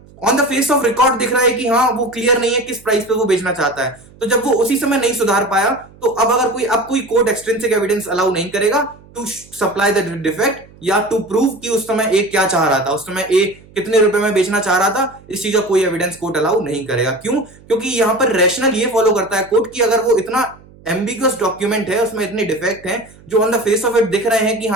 on the face of record दिख रहा है कि हाँ वो क्लियर नहीं है किस प्राइस पे वो बेचना चाहता है, तो जब वो उसी समय नहीं सुधार पाया तो अब कोई कोर्ट एक्सट्रिंसिक एविडेंस अलाउ नहीं करेगा टू सप्लाई द डिफेक्ट या टू प्रूव कि उस समय ए क्या चाह रहा था, उस समय ए कितने रुपए में बेचना चाह रहा था। इस चीज का कोई एविडेंस कोर्ट अलाउ नहीं करेगा। क्यों? क्योंकि यहाँ पर रैशनल ये फॉलो करता है कोर्ट कि अगर वो इतना एम्बिगुअस डॉक्यूमेंट है, उसमें इतने डिफेक्ट हैं जो on the face of it दिख रहे हैं कि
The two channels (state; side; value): noise; right; hum, 24 dB below the sound